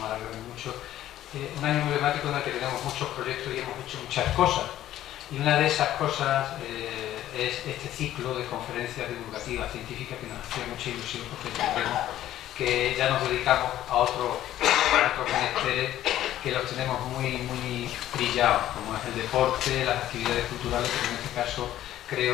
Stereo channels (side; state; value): right; quieter; 12.9 dB